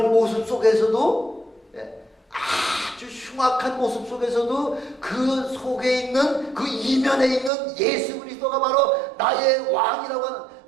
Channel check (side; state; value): left; drops out; at 7.5 s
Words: 아주 흉악한 모습 속에서도 그 속에 있는 그 이면에 있는 예수 그리스도가 바로 나의 왕이라고 하는,